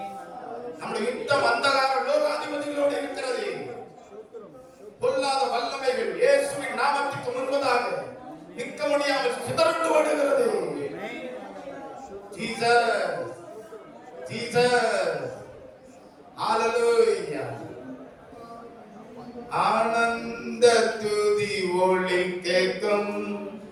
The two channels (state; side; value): identical; both; correlation 1.00